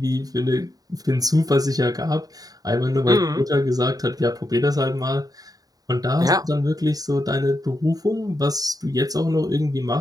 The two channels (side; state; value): left; late; 0.18 ms